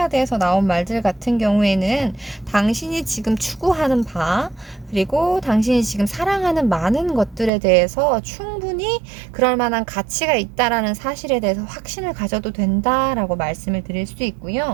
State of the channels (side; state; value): left; drops out; at 7.5 s